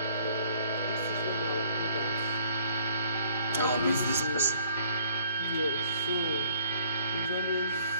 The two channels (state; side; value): inverted; both; correlation -0.59